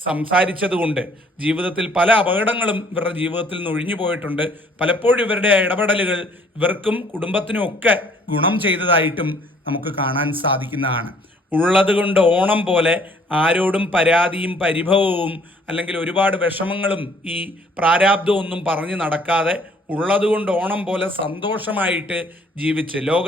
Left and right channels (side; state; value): both; normal; correlation 0.59